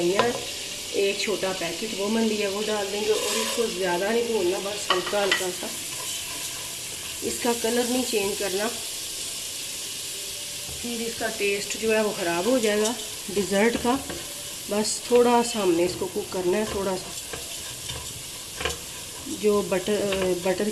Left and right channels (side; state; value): both; identical; correlation 1.00